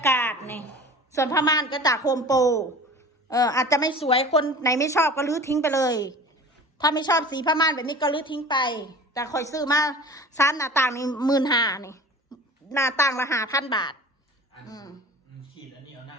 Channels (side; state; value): both; normal; correlation 0.40